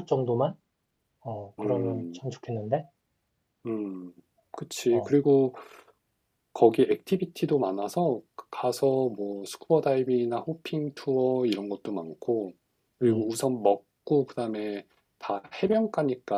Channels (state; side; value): identical; both; correlation 1.00